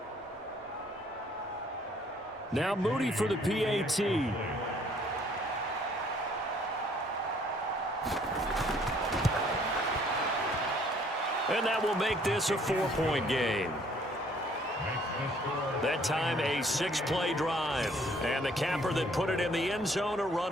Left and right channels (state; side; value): normal; both; correlation 0.61